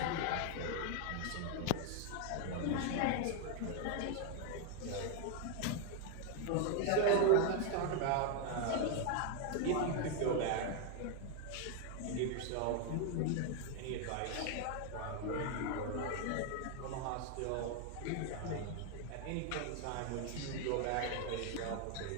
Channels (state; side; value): different; both; correlation 0.01